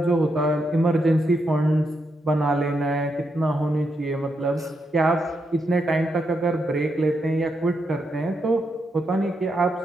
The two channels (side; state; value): both; normal; correlation 0.82